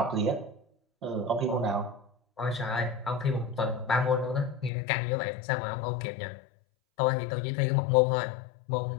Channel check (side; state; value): right; drops out; at 4.7 s